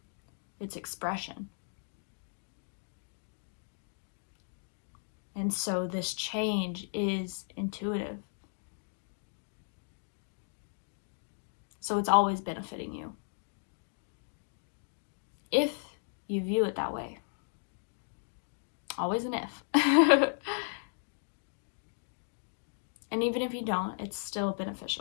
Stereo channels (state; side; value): silent; right; digital silence